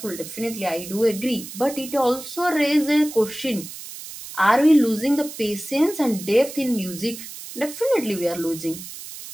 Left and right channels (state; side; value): noise; right; hiss, 12 dB below the sound